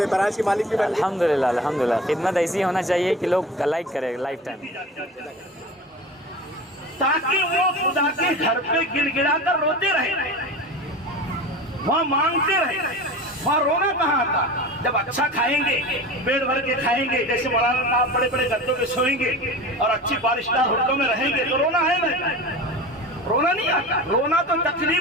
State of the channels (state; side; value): normal; both; correlation 0.33